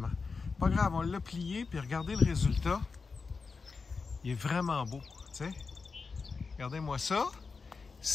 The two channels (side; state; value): right; quieter; 4.7 dB